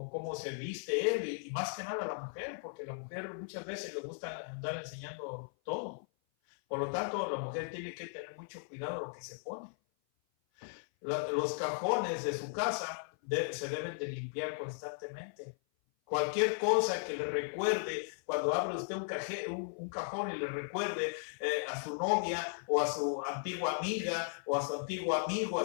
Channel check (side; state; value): right; silent; 53 dB below the other